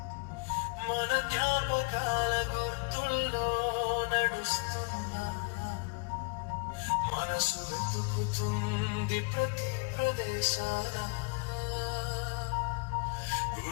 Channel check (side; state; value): right; quieter; 31.4 dB